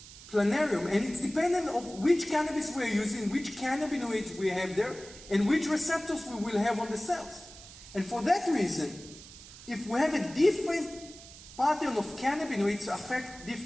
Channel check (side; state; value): right; noise; hiss, 17 dB below the sound